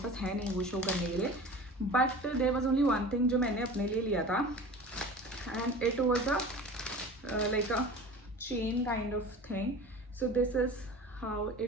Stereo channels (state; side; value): normal; both; correlation 0.38